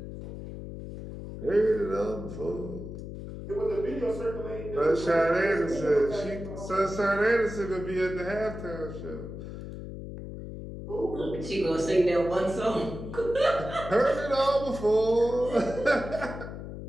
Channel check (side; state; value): left; noise; hum, 9 dB below the sound